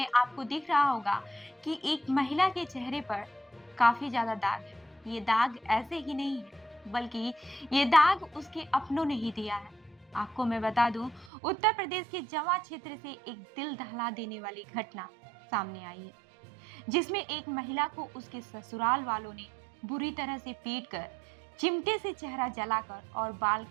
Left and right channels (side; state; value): left; drops out; at 11.3 s